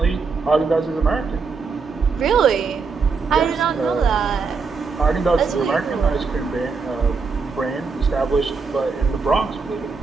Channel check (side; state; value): left; quieter; 4.8 dB